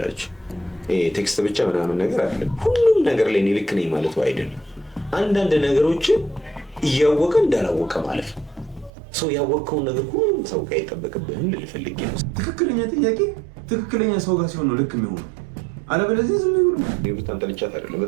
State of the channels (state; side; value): drops out; left; at 8.9 s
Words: ቴክስት ብቻ ምናምን ነገር አለ። ሁሉም ነገር ላይ እኔ ልክ ነኝ ማለት አይደለም። አንዳንድ ነገሮችን እያወቀ እንዳላወቀ ማለት ነው። ሰው ያወቀውን ነገር ሁሉ ሰው ጋር አይጠበቅብህም ልፈልግ ነው። ትክክለኛ ጥያቄ ትክክለኛ ሰው ጋር ሲሆን ነው ልክ የሚሆነው። አለበለዚያ ዝም ብሎ በጣም ጠልቻት አይደለም፣